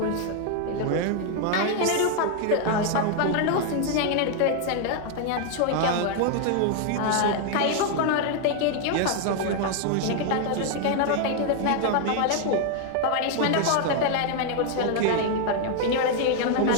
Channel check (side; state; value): both; different; correlation 0.00